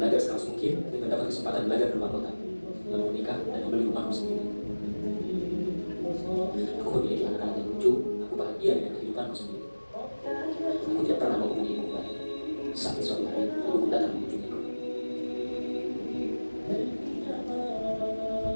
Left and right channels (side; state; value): both; inverted; correlation -1.00